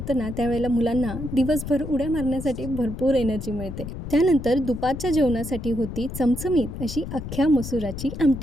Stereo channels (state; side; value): noise; left; rumble, 8 dB below the sound